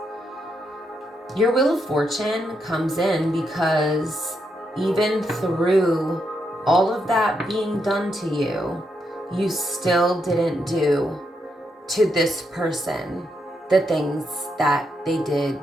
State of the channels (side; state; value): both; normal; correlation 0.81